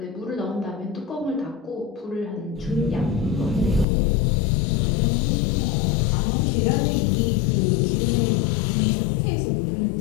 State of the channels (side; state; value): right; drops out; at 3.9 s